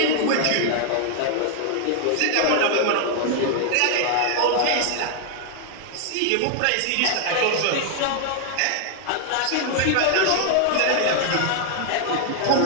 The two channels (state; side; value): different; both; correlation 0.00